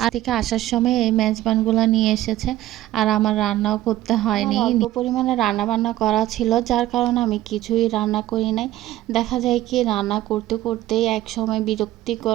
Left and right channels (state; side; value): quieter; left; 14.7 dB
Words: থেকে আসার সময় এই মেজবানগুলো নিয়ে এসেছে। আর আমার রান্নাও করতে হয়নি, অল্প পরিমাণে রান্না বান্না করা ছিল, যার কারণে আমি কিছুই রান্না করি নাই। দেখা যায় কি রান্না করতে করতেই এক সময়